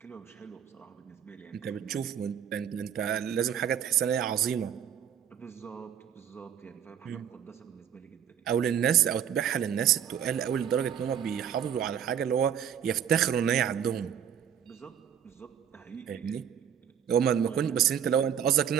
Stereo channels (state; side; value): quieter; left; 8.8 dB